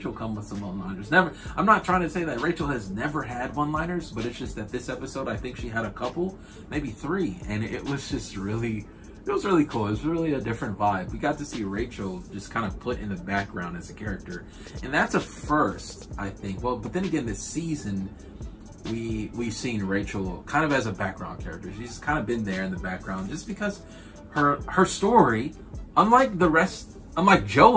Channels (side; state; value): both; identical; correlation 1.00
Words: come with some one-liners. I'm not trying to say that Rachel has never had one-liners, but it's just that this episode, I think she had a couple, maybe 3, and it was just really, it was really cool. It was really a different vibe. We got to see Rachel just kind of put in the background as a character, and that's a first, I think. Well, but then again, this season, we've seen Rachel kind of as a background character. She's kind of been there in the background just because her story, unlike